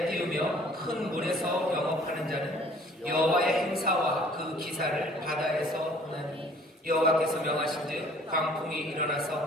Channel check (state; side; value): normal; both; correlation 0.54